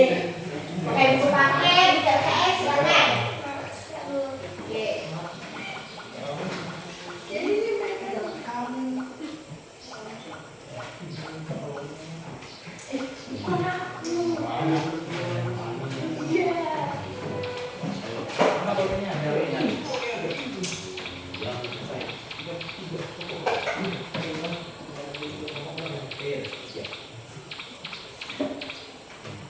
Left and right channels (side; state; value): both; identical; correlation 1.00